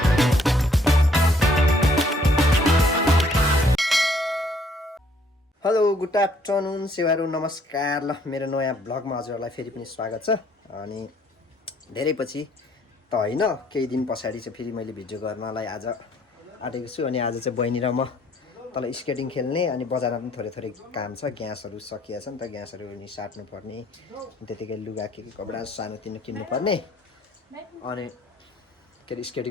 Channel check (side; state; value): both; normal; correlation 0.64